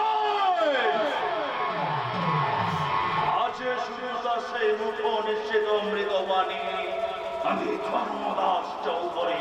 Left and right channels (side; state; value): both; identical; correlation 1.00